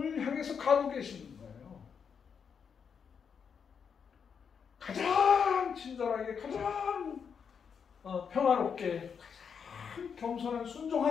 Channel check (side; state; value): right; quieter; 6.7 dB